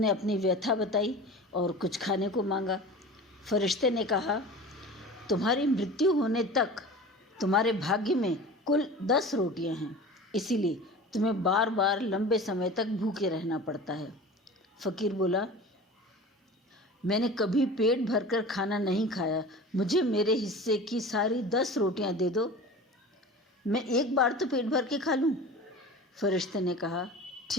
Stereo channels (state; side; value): normal; both; correlation 0.37